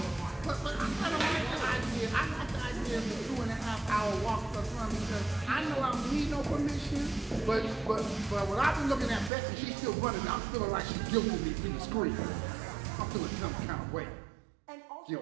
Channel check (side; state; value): left; drops out; at 9.3 s